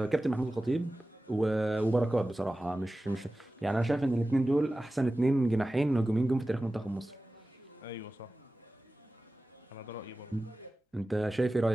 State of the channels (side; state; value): both; normal; correlation 0.96